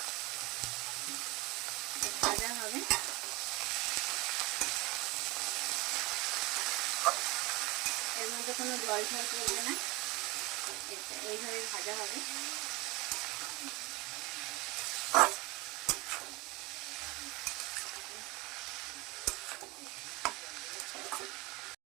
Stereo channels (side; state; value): left; quieter; 23.5 dB